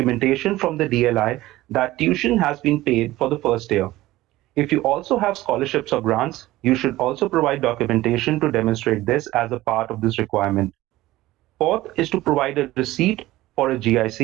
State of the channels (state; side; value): quieter; left; 17.0 dB